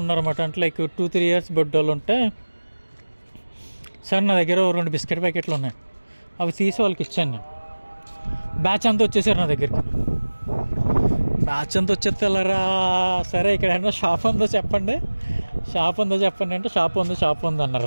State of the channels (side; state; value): both; inverted; correlation -1.00